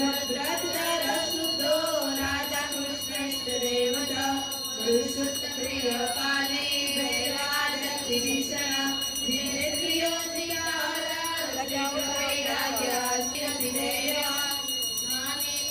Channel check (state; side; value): identical; both; correlation 1.00